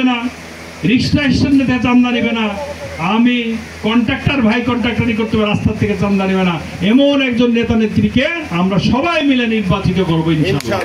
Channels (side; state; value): both; identical; correlation 1.00